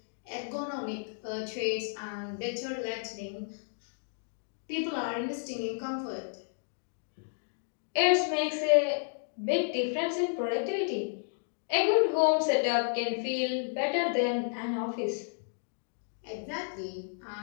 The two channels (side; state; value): right; silent; digital silence